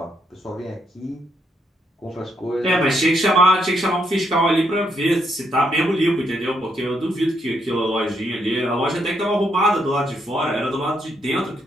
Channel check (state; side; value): normal; both; correlation 0.76